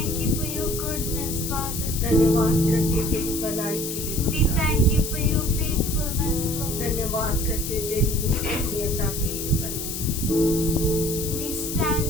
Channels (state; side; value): noise; left; hiss, 5 dB below the sound